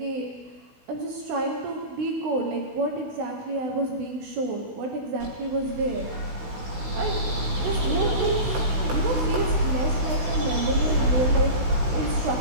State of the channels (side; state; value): left; late; 16 ms